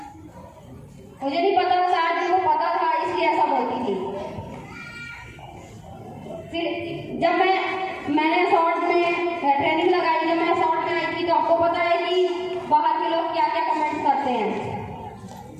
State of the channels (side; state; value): both; identical; correlation 1.00